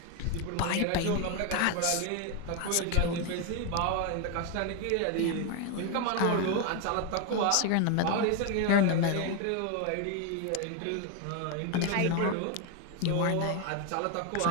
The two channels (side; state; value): both; different; correlation 0.01